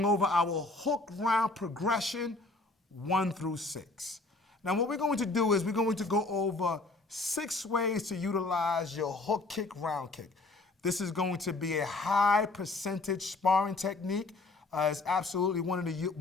over our hook round progression 1 through 6. Now, what we're going to do is we're going to go over 6 ways to utilize your hook kick, round kick. This is going to be a high percentage sparring technique. It's absolutely one of the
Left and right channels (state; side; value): quieter; right; 3.3 dB